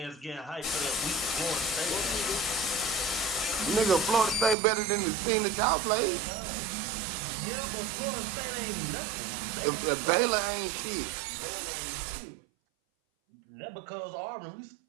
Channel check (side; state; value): left; drops out; at 4.5 s